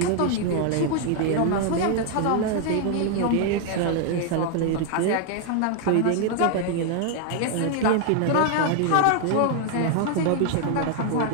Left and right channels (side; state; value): both; different; correlation 0.00